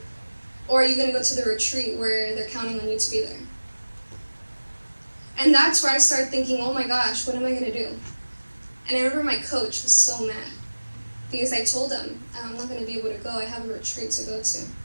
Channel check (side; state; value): both; inverted; correlation -1.00